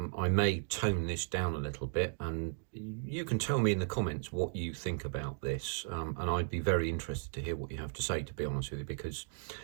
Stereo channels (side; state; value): left; silent; digital silence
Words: may tone this down a little bit, and you can tell me in the comments what you think about this, and I'd be very interested to hear what you have to say, to be honest with you, because